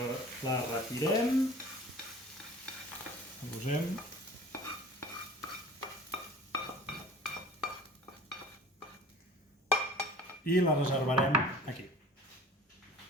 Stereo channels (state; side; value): normal; both; correlation 0.44